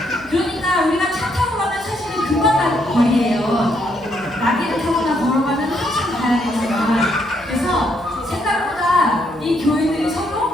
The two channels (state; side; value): noise; right; hum, 24 dB below the sound